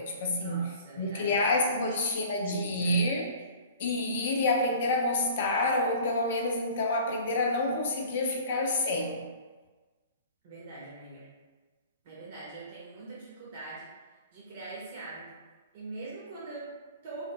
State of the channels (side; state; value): both; inverted; correlation -0.45